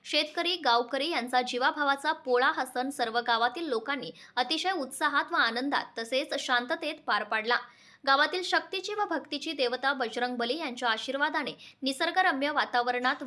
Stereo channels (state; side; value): identical; both; correlation 1.00